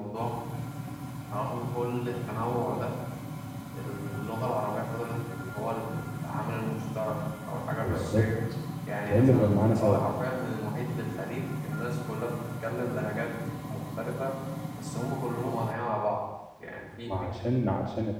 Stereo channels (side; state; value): both; identical; correlation 1.00